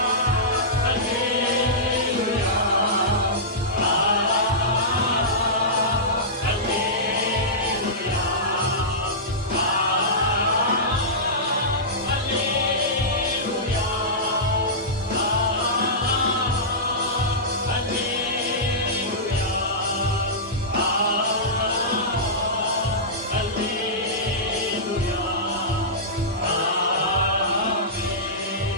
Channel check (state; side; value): normal; both; correlation -0.16